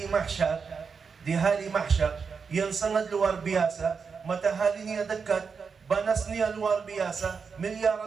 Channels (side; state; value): left; quieter; 5.6 dB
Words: mahsyar yang sangat luar biasa, mataharinya dekat, panasnya luar biasa,